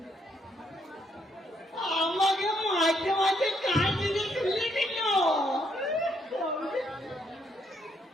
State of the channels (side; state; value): both; normal; correlation 0.73